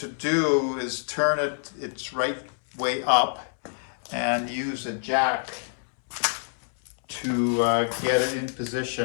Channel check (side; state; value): right; silent; 61 dB below the other